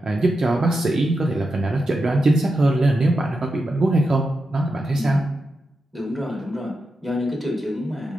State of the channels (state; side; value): normal; both; correlation 0.88